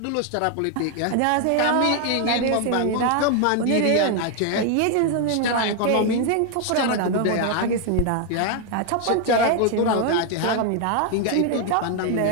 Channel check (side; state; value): both; different; correlation 0.00